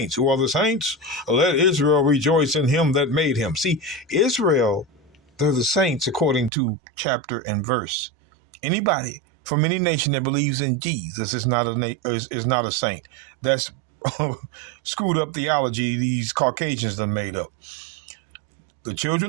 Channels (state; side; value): drops out; left; at 6.5 s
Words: Who are the saints? Let Israel rejoice in him that made him. See, Israel, they're the saints according to chapter and verse. Anybody from any nation that believes in Jesus is not a saint. That's screwed up theology these Caucasians done made up. The